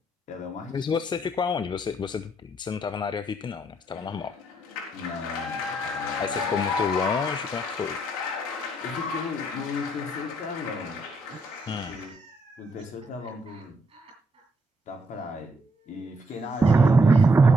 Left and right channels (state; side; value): normal; both; correlation 0.73